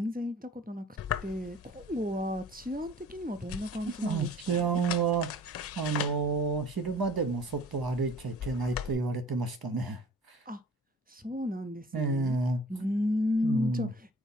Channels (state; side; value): normal; both; correlation 0.48